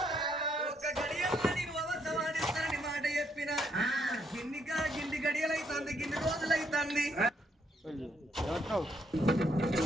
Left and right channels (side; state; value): both; normal; correlation 0.73